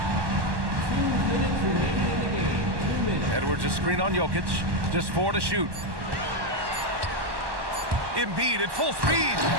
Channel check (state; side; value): late; left; 1.1 ms